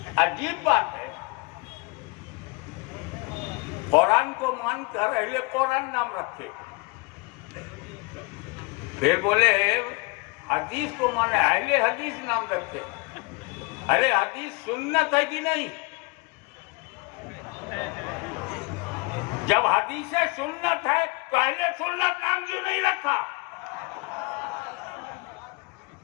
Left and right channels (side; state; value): right; quieter; 26.4 dB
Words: عجیب بات ہے، قرآن کو مان کر اہل قرآن نام رکھے، پھر بولے حدیث کو مانے اہل حدیث نام رکھے. ارے حدیث سنت ہے کہ نہیں؟ جب حدیث سنت ہے تو اہل سنت نام کیوں نہیں رکھا؟